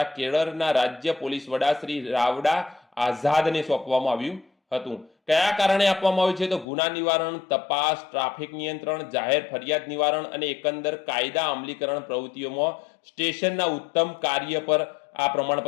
કેરળના રાજ્ય પોલીસ વડા શ્રી રાવડા આઝાદને સોંપવામાં આવ્યું હતું। કયા કારણે આપવામાં આવ્યું છે? તો ગુના નિવારણ, તપાસ, ટ્રાફિક નિયંત્રણ, જાહેર ફરિયાદ નિવારણ અને એકંદર કાયદા અમલીકરણ પ્રવૃત્તિઓમાં સ્ટેશનના ઉત્તમ કાર્ય પર આ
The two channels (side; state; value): right; drops out; at 6.7 s